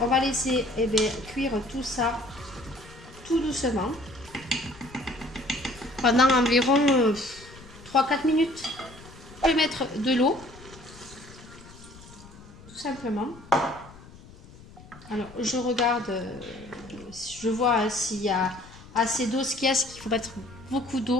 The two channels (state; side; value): noise; left; rumble, 20 dB below the sound